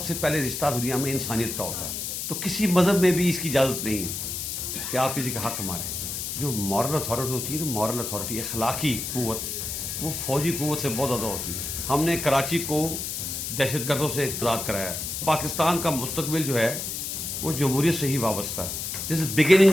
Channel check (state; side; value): noise; left; hiss, 4 dB below the sound